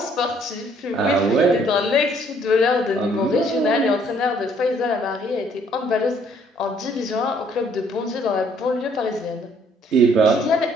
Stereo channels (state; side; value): normal; both; correlation 0.63